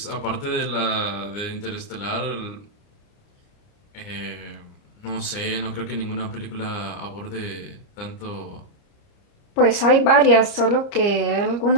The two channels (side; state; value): right; late; 30 ms